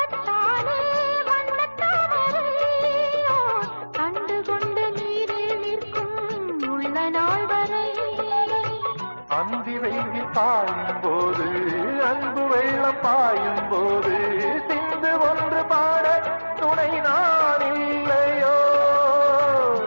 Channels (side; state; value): both; inverted; correlation -1.00